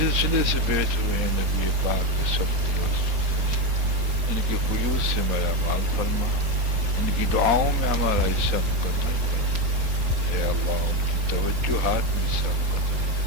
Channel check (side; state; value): left; late; 4.1 ms